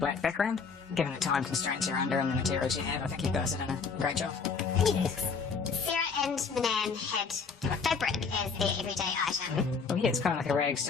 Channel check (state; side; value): quieter; right; 5.3 dB